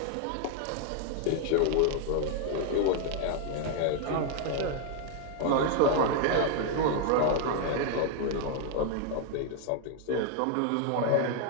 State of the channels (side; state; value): both; different; correlation 0.00